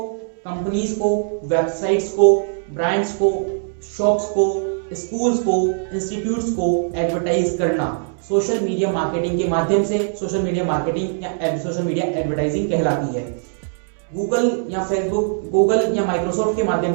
कंपनीज को, वेबसाइट्स को, ब्रांड्स को, शॉप्स को, स्कूल्स को, इंस्टीट्यूट्स को एडवर्टाइज करना सोशल मीडिया मार्केटिंग के माध्यम से सोशल मीडिया मार्केटिंग या सोशल मीडिया एडवर्टाइजिंग कहलाती है। गूगल या फेसबुक, गूगल या माइक्रोसॉफ्ट के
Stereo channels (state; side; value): silent; left; digital silence